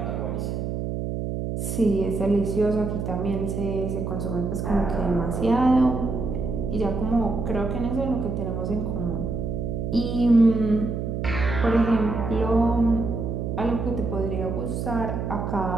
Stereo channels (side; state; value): right; noise; hum, 3 dB below the sound